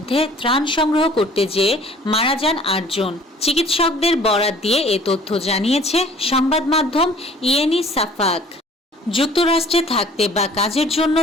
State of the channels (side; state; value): both; normal; correlation 0.52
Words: ত্রাণ সংগ্রহ করতে যেয়ে মারা যান 8 জন। চিকিৎসকদের বরাত দিয়ে এ তথ্য জানিয়েছে সংবাদ মাধ্যম ইয়েনি সাফাক। যুক্তরাষ্ট্রে থাকতে বা কাজের জন্য